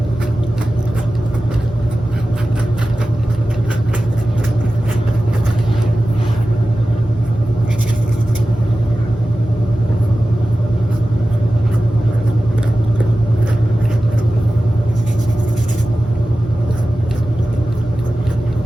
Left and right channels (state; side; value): normal; both; correlation 0.95